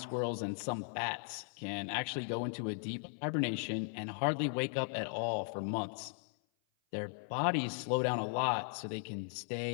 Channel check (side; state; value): right; silent; 53 dB below the other